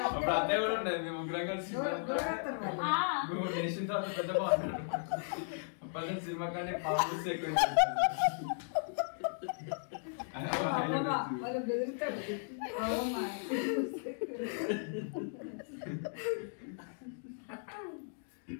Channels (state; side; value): silent; right; digital silence